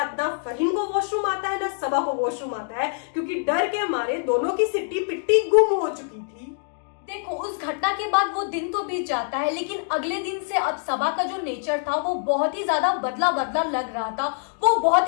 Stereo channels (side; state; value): right; silent; digital silence